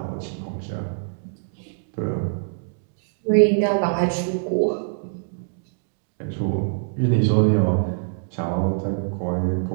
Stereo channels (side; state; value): left; silent; digital silence